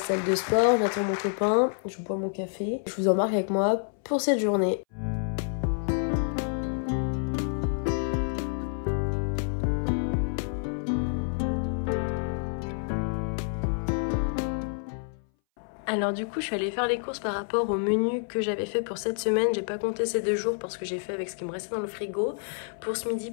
de sport. J'attends mon copain, je bois mon café. Je vous embarque avec moi pour cette journée. Alors du coup je suis allée faire les courses par rapport au menu que j'avais fait pour cette semaine. J'ai pas compté ces 2 jours parce que j'ai fait avec ce qui me restait dans le frigo. Pour ce midi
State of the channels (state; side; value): silent; right; 59 dB below the other